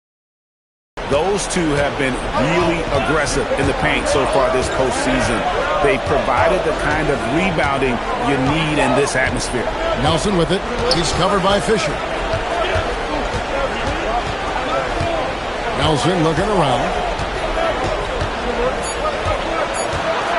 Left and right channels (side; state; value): both; identical; correlation 1.00